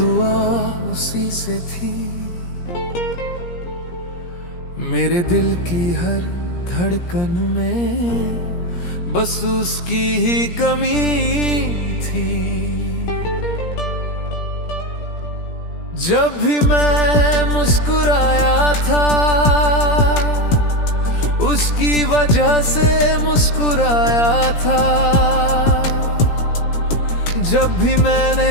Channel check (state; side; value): late; right; 17 ms